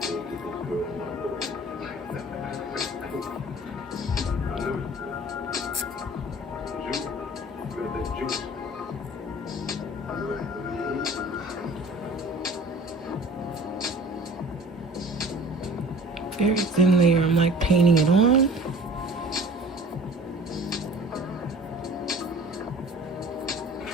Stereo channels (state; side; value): normal; both; correlation 0.46